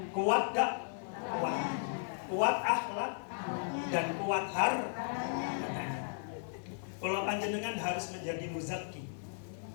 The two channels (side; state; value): right; silent; 54 dB below the other